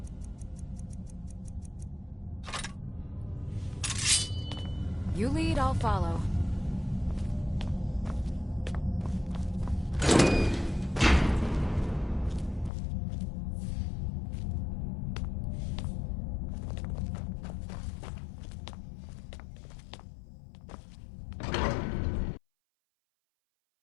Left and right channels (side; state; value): right; drops out; at 12.7 s